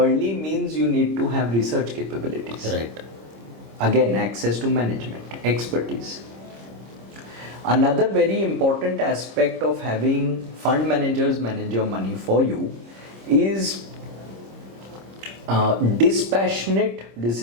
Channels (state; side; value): late; left; 26 ms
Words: means you need to have research capabilities. Right. Again, access to management, expertise. Another very important aspect of having fund managers manage your money for you is dispassionate